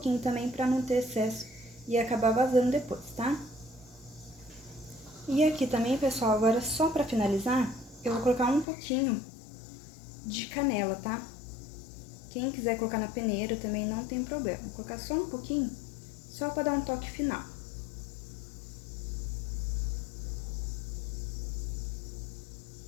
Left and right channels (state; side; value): drops out; right; at 8.7 s